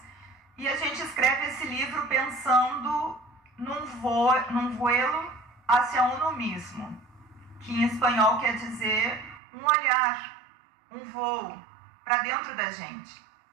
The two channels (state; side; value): drops out; left; at 9.4 s